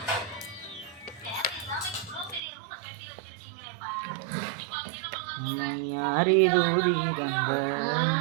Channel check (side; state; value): left; drops out; at 2.4 s